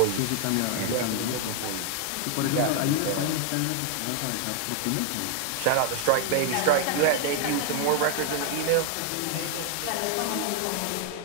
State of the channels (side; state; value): both; different; correlation 0.00